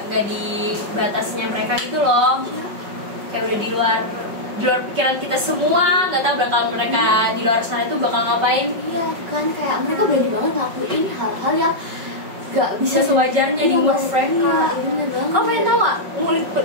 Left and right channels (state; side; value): late; left; 5.4 ms